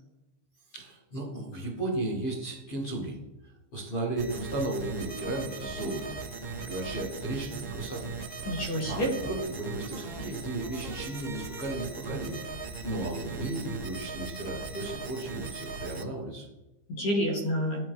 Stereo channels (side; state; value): right; late; 15 ms